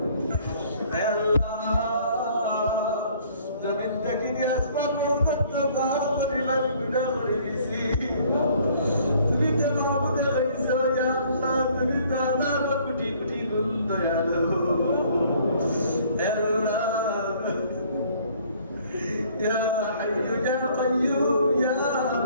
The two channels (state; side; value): inverted; both; correlation -0.58